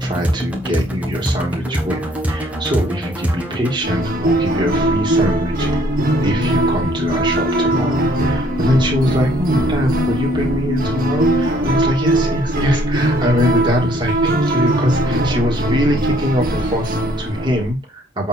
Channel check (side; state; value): both; normal; correlation 0.62